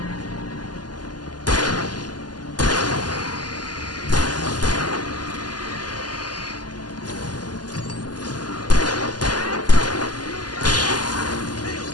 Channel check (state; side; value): late; right; 0.70 ms